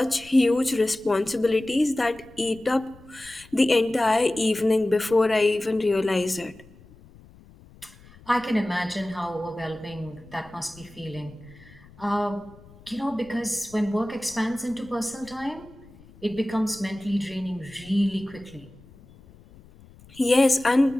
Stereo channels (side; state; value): left; noise; rumble, 24 dB below the sound